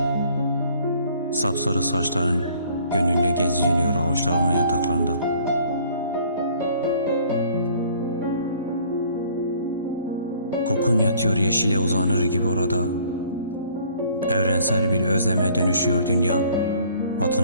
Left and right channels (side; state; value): both; inverted; correlation -0.57